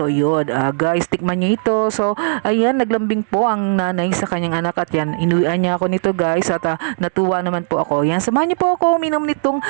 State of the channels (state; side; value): silent; left; digital silence